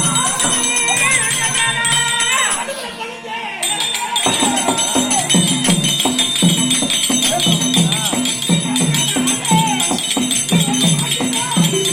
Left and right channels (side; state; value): both; identical; correlation 1.00